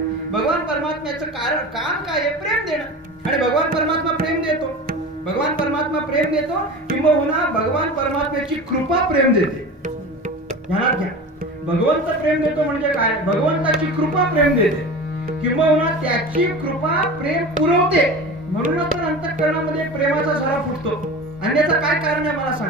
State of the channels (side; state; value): both; normal; correlation 0.32